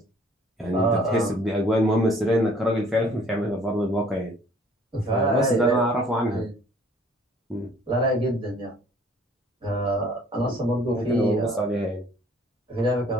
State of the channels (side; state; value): both; normal; correlation 0.56